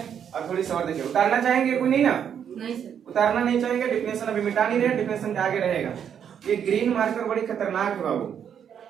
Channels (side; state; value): left; quieter; 8.4 dB